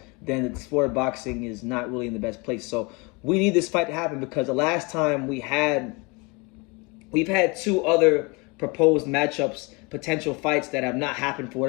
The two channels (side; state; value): right; quieter; 28.2 dB